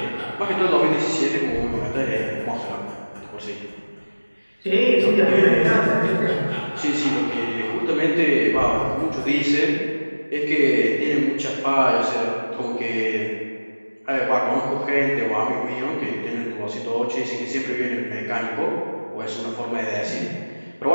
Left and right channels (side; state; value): both; inverted; correlation -1.00